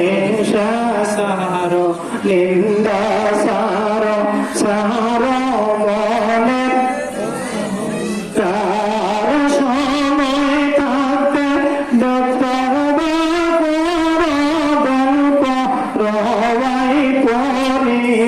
সারো নিন্দা সারো সারো মনের। তার সময় থাকতে গল্প রবাই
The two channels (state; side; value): identical; both; correlation 1.00